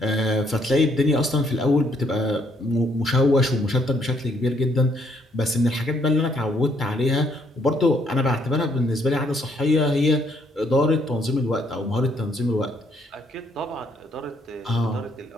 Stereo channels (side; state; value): both; normal; correlation 0.70